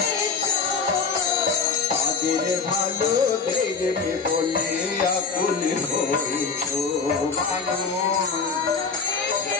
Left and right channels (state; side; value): quieter; right; 5.2 dB